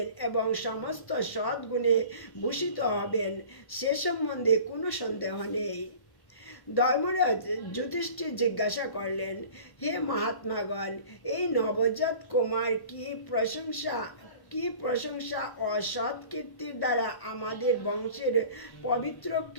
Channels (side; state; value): right; late; 1.1 ms